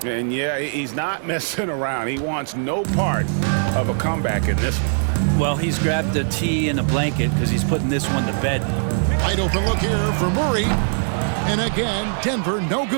And yeah, he's not messing around. He wants no part of a comeback in this one. Well, he's grabbed a tee and a blanket because he's putting this one to bed. Wide open look here for Murray. And again, Denver no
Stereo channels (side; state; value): left; silent; 65 dB below the other